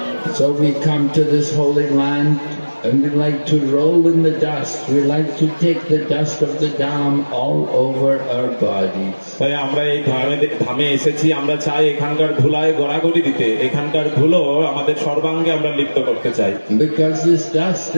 So we come to this holy land and we like to roll in the dust. We like to take the dust of the Dham all over our bodies. তাই আমরা এই ধামে এসেছি, আমরা চাই এখানকার ধুলায় গড়াগড়ি দিতে, এখানকার ধুলো আমাদের সর্বাঙ্গে আমরা লিপ্ত করতে চাই। Because this dust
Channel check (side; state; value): both; inverted; correlation -1.00